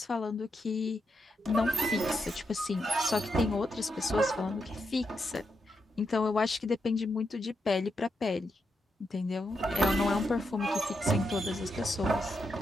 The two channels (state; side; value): normal; both; correlation 0.83